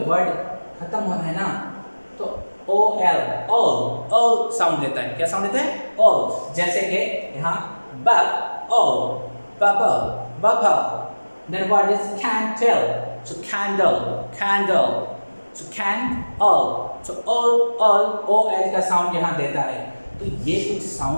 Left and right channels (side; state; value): both; inverted; correlation -1.00